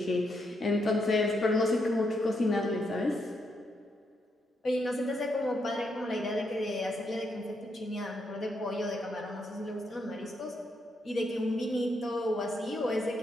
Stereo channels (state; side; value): normal; both; correlation 0.79